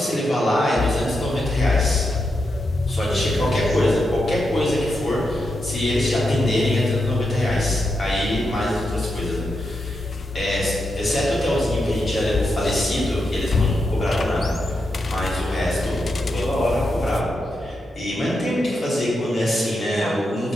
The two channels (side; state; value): both; normal; correlation 0.85